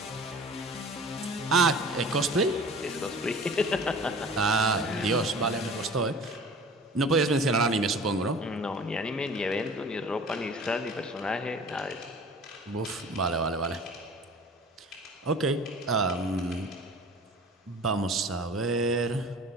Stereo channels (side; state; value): both; normal; correlation 0.43